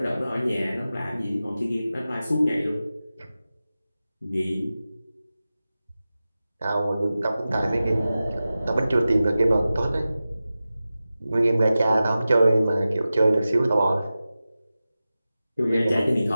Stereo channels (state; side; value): inverted; both; correlation -0.95